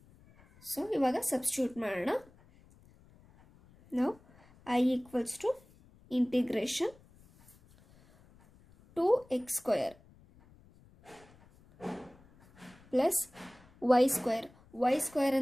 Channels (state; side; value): noise; left; rumble, 27 dB below the sound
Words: So ಇವಾಗ substitute ಮಾಡೋಣ. ನಾವು I equals to integration 2x square plus y square